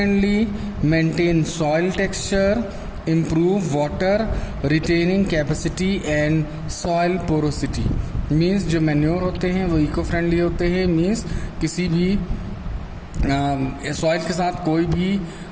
maintain soil texture, improve water retaining capacity and soil porosity. Means जो मैन्योर होते हैं वो इको फ्रेंडली होते हैं. मीन्स किसी भी सॉइल के साथ कोई भी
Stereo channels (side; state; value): both; identical; correlation 1.00